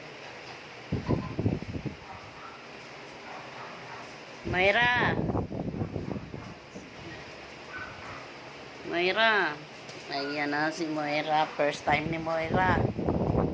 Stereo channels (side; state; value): both; identical; correlation 1.00